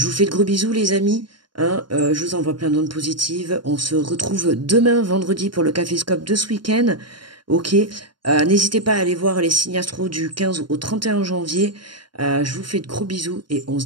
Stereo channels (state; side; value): late; left; 0.72 ms